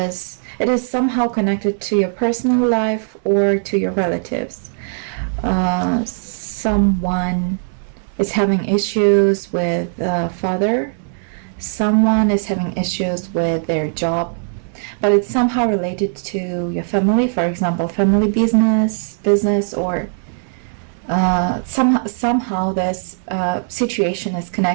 somehow connected to your personal life or to your relatives. Someone is having issues with father. Someone is having issues with their job, but it's somehow related to your family. For example, family business, or somehow this situation is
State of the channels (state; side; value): silent; left; digital silence